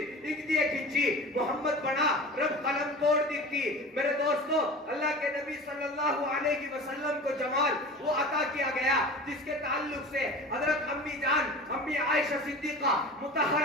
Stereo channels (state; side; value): normal; both; correlation 0.36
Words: ایک دیے کھنچی، محمد بنا رب قلم توڑ دیتی۔ میرے دوستو اللہ کے نبی صلی اللہ علیہ وسلم کو جمال وہ عطا کیا گیا جس کے تعلق سے حضرت امی جان امی عائشہ صدیقہ